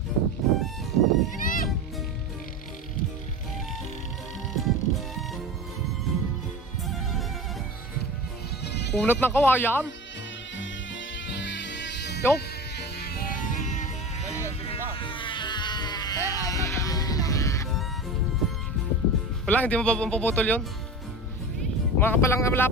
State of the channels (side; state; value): both; normal; correlation 0.30